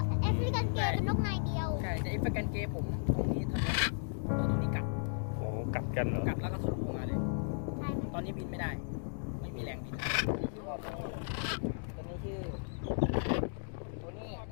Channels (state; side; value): silent; right; digital silence